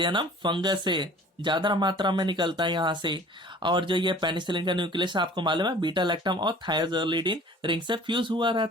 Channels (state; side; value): normal; both; correlation 0.48